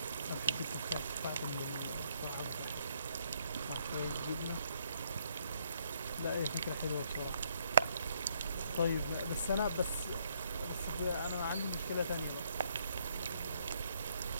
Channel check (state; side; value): inverted; both; correlation -0.71